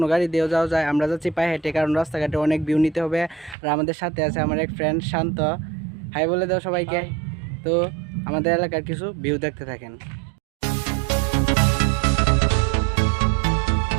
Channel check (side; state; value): left; drops out; at 3.6 s